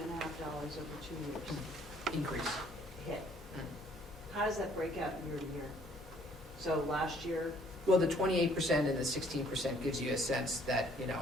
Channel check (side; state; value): both; normal; correlation 0.61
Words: over 2 years Increase. hit. How does that break out year to year? So last year, Well, the 28% and the 16% gives you a sense that,